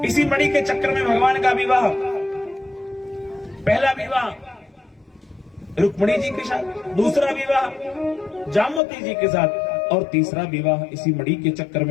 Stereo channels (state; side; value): drops out; right; at 8.8 s